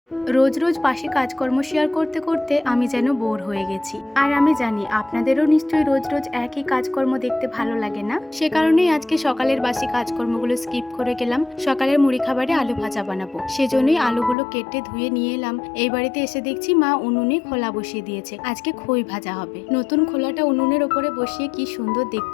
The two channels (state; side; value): drops out; right; at 14.4 s